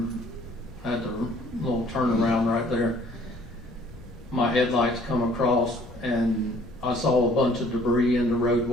at the little turnaround right there, my headlights come across and I saw a bunch of debris in the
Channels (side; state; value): left; noise; rumble, 21 dB below the sound